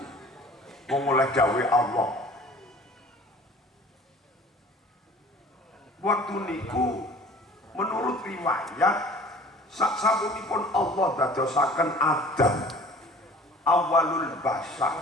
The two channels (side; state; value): both; normal; correlation 0.47